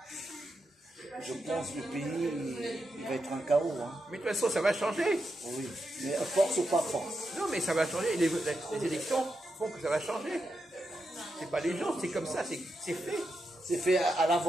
Je pense que le pays, il va être un chaos. Hein. Mais de toute façon, ça va changer. Oui, mais à force ou pas force. Non, mais ça va changer. Les élections font que ça va changer. C'est pas les gens, c'est comme ça, c'est fait. C'est fait à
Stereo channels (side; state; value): both; normal; correlation 0.86